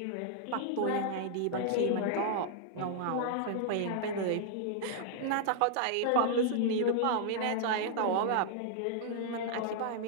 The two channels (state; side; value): different; both; correlation -0.01